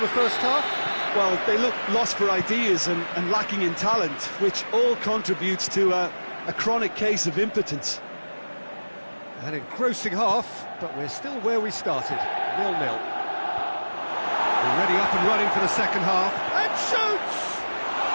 the first half? Well, they look lost for ideas and lacking in talent, which all contributes to a chronic case of impotence. An engrossing half, but we're still where we started, 0-0. Already up and running for the second half, and shoots!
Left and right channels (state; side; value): inverted; both; correlation -1.00